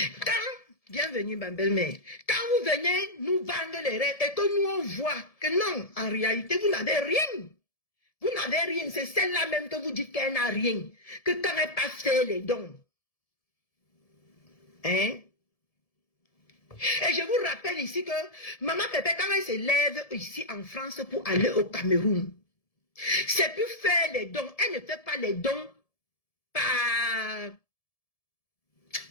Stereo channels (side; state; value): right; late; 1.7 ms